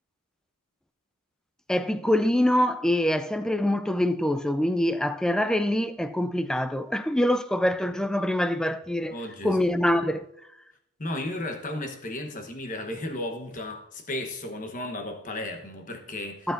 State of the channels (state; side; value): normal; both; correlation 0.86